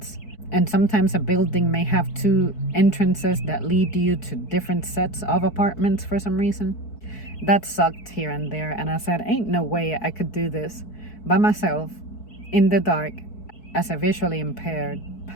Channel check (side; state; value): right; late; 4.6 ms